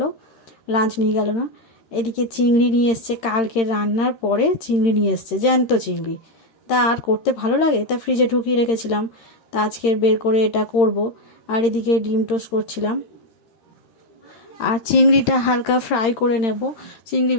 লাঞ্চ নিয়ে গেল না। এদিকে চিংড়ি নিয়ে এসছে, কালকে রান্নার পরে চিংড়ি নিয়ে এসছে, জ্যান্ত চিংড়ি। তা আর করতে ভালো লাগে, তা ফ্রিজে ঢুকিয়ে রেখেছিলাম, তা আজকে বের করে এটা করব। আর এদিকে ডিম টোস্ট করছিলাম, আর চিংড়িটা হালকা ফ্রাই করে নেব। চিংড়ি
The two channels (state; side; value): late; right; 13 ms